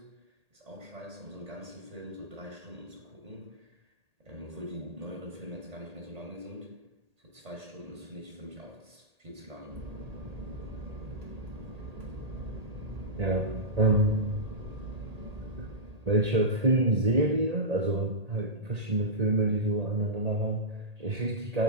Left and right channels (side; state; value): left; late; 1.8 ms